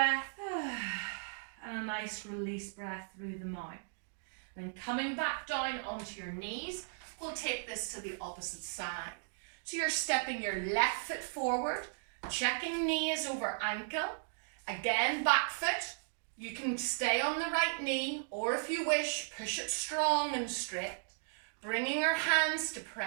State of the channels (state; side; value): silent; left; digital silence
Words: and a nice release breath through the mouth. Then coming back down onto your knees, we'll take this to the opposite side. So you're stepping your left foot forward, checking knee is over ankle. Again, back foot, You can stay on the right knee, or if you wish, push it strong and straight, bringing your hands to